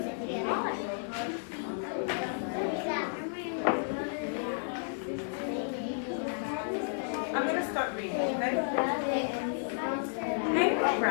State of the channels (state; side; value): silent; right; digital silence